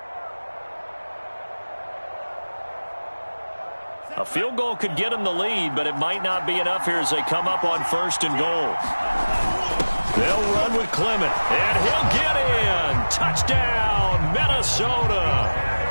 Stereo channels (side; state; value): both; inverted; correlation -1.00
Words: A field goal could get him the lead, but it might not be enough here as they come up on 1st and goal. They'll run with Clement, and he'll get in. Touchdown, Minnesota.